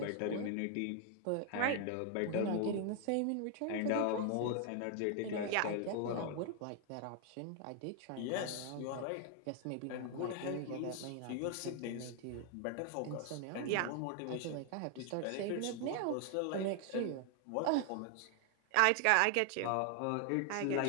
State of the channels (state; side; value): different; both; correlation 0.00